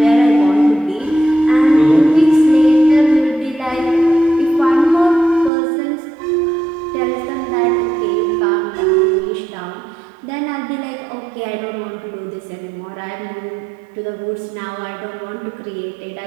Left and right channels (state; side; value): drops out; left; at 5.5 s